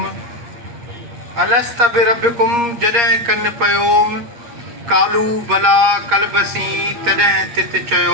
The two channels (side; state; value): left; late; 8.5 ms